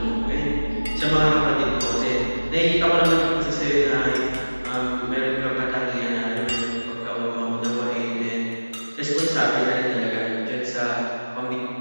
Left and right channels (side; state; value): both; inverted; correlation -1.00